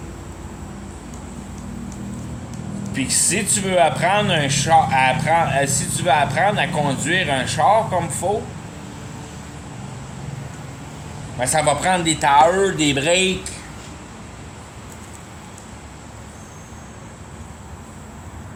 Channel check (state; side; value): identical; both; correlation 1.00